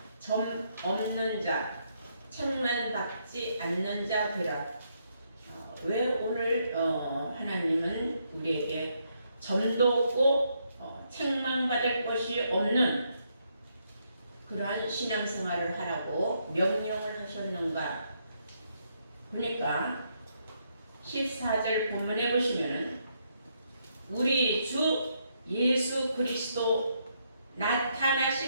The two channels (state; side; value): inverted; both; correlation -0.76